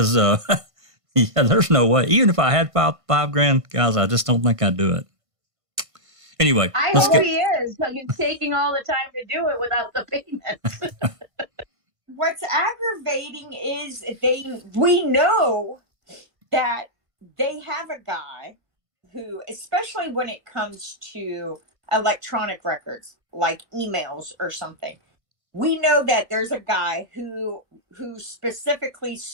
there's no way. Even if I had $5,000, guys, I just don't think I'd do it. Anyway, I hope he is, because he's taking all the time to do it without the payment. What's aggravating is we know that they have a guy who, especially when it comes to electronic records, like emails or something, we know that there's a guy who specifically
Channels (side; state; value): left; late; 1.5 ms